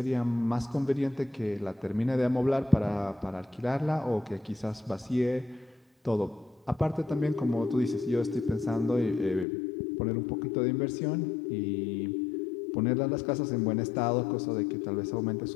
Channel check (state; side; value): drops out; right; at 9.5 s